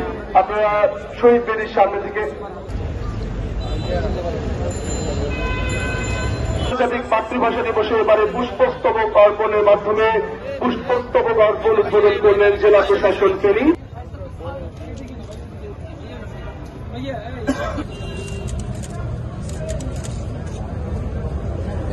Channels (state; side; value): identical; both; correlation 1.00